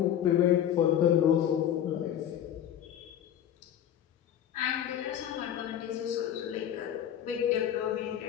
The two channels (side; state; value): right; quieter; 10.4 dB